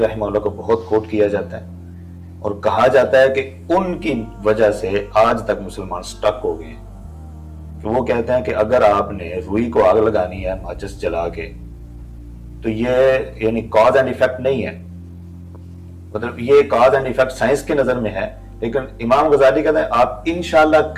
اللہ کو بہت کوٹ کیا جاتا ہے اور کہا جاتا ہے کہ ان کی وجہ سے آج تک مسلمان سٹک ہو گئے ہیں کہ وہ کہتے ہیں کہ اگر آپ نے روئی کو آگ لگانی ہے ماچس جلا کے تو یہ یعنی کاز اینڈ ایفیکٹ نہیں ہے، مطلب یہ کاز اینڈ ایفیکٹ سائنس کی نظر میں ہے، لیکن امام غزالی کہتے ہیں آپ انشاءاللہ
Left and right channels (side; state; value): both; identical; correlation 1.00